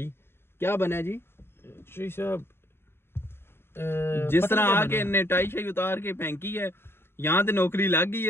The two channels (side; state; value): right; late; 0.11 ms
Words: क्या बना जी श्री साहब, जिस तरह आके इन्हें टाई शाई उतार के फेंकी है, यहाँ तो नौकरी लग गई